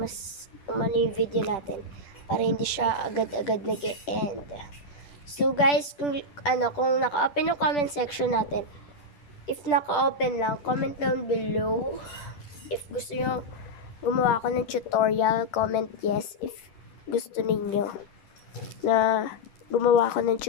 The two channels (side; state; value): right; late; 10 ms